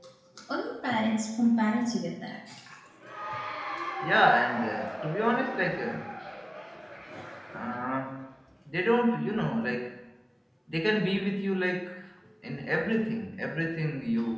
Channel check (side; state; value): both; identical; correlation 1.00